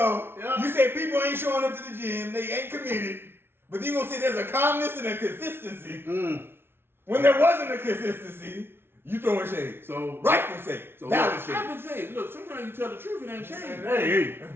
Yeah. you said people ain't showing up to the gym, they ain't committed, but you gonna say there's a calmness and a consistency. When there wasn't a consistency, you throwing shade. So Rightful shade. So Valid look, shade. I would say, look, sometimes you tell the truth, it ain't shame. Hey,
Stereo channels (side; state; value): left; late; 0.11 ms